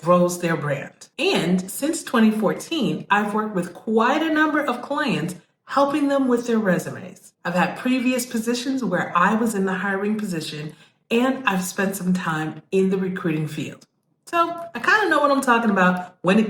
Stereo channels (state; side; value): identical; both; correlation 1.00